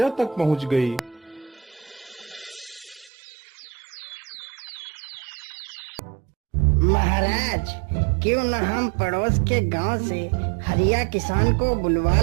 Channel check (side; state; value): left; drops out; at 3.1 s